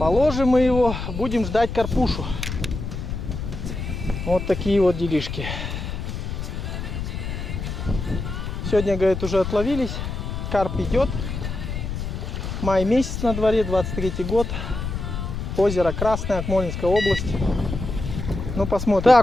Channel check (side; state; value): left; noise; rumble, 5 dB below the sound